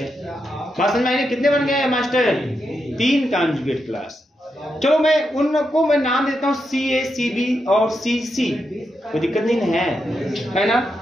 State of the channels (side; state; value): both; normal; correlation 0.85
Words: बात समझ में आई? कितने बन गए मास्टर? 3 conjugate class. चलो मैं उनको नाम देता हूँ CA, CB और CC, कोई दिक्कत नहीं है ना।